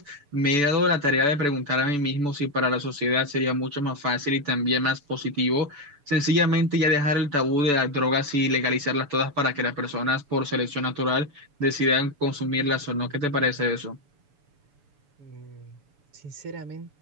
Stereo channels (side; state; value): left; late; 6.9 ms